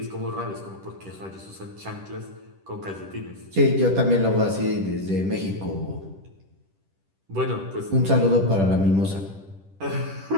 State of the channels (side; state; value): left; late; 10 ms